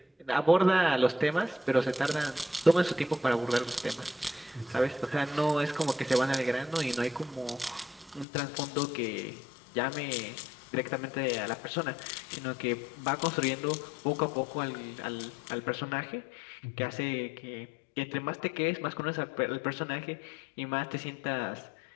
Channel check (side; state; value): right; drops out; at 8.2 s